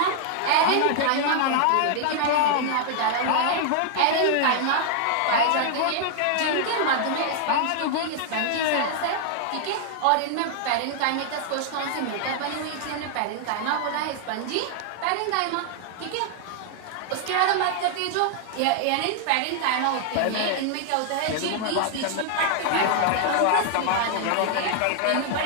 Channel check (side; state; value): both; different; correlation 0.00